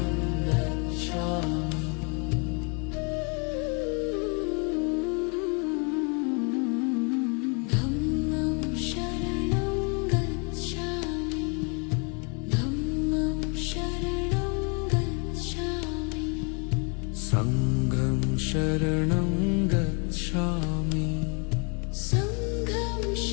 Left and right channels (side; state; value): right; quieter; 35.6 dB